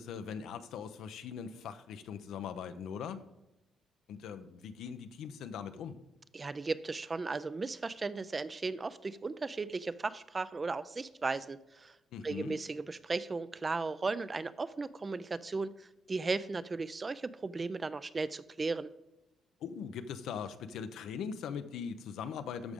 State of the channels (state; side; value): normal; both; correlation 0.85